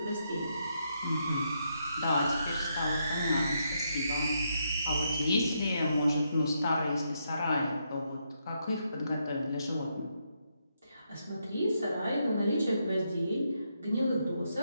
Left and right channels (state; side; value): inverted; both; correlation -0.79